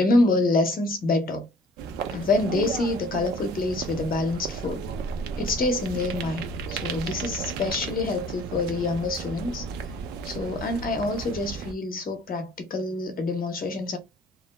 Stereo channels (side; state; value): both; normal; correlation 0.53